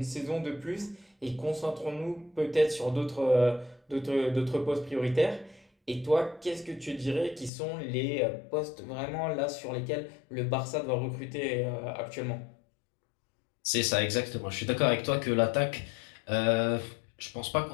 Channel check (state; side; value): drops out; right; at 7.5 s